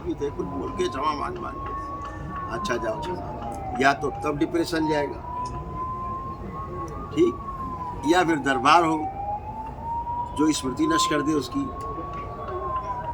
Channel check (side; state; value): both; identical; correlation 1.00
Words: भी थे, कुछ बोल के क्षमा मान के, अच्छा जाओ क्षमा, या तो तब डिप्रेशन जाएगा, ठीक, या फिर दरबार हो जो स्मृति नष्ट कर दे, उसकी